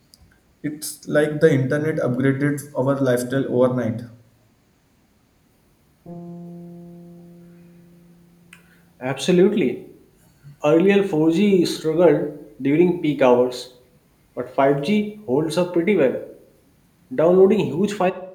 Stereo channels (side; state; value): both; identical; correlation 1.00